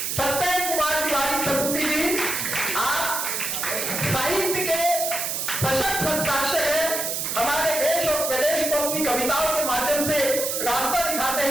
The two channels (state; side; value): noise; right; hiss, 2 dB below the sound